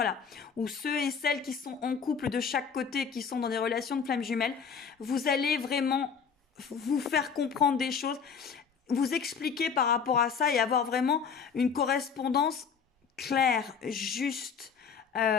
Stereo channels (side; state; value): right; quieter; 6.3 dB